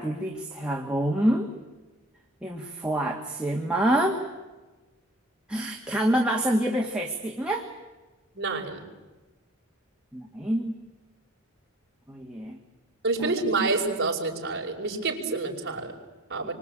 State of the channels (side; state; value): both; normal; correlation 0.50